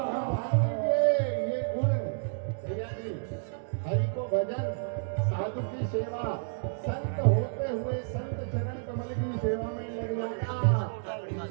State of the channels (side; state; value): left; silent; digital silence